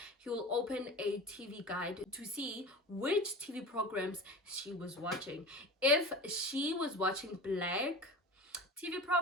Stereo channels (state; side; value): normal; both; correlation 0.33